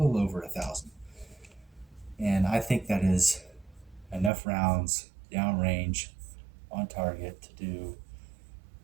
over 1,000. And I think that is enough rounds downrange on target to do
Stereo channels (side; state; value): left; drops out; at 4.3 s